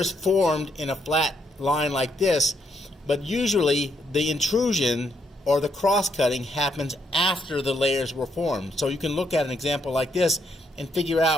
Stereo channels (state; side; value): normal; both; correlation 0.75